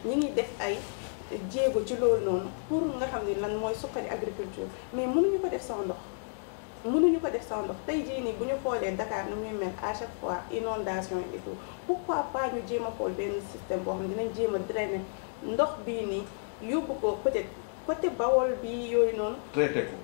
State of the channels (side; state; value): right; silent; digital silence